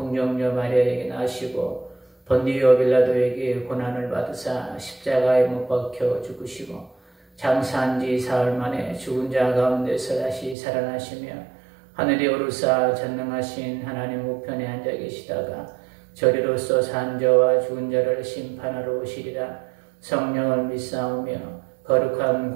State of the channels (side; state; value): left; drops out; at 10.6 s